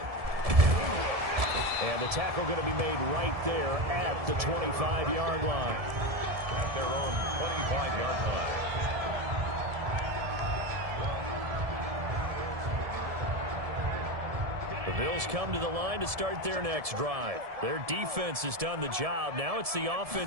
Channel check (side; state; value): left; late; 1.7 ms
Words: And the tackle going to be made right there at the 25-yard line. At their own 25-yard line. The Bills come to the line to start their next drive. Their defense has done the job. Now it's the